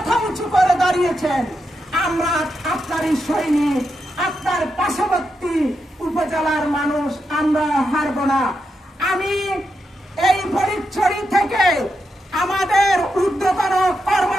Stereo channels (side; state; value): both; normal; correlation 0.85